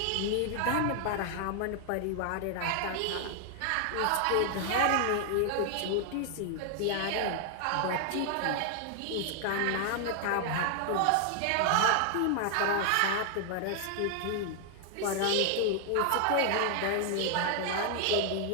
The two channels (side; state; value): both; different; correlation 0.00